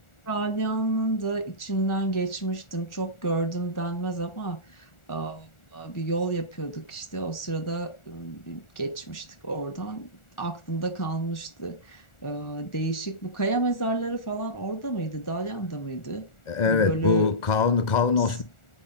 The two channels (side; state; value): right; late; 1.4 ms